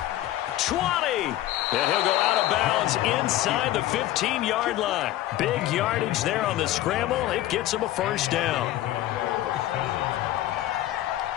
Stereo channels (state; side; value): quieter; right; 14.3 dB